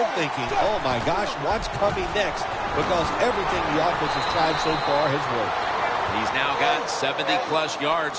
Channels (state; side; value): identical; both; correlation 1.00